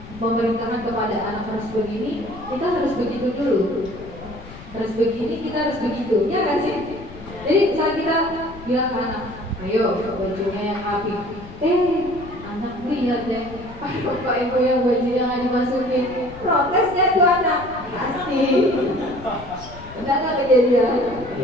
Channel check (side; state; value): left; noise; rumble, 16 dB below the sound